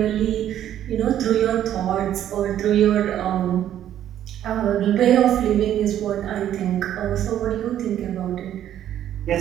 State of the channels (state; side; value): quieter; left; 11.1 dB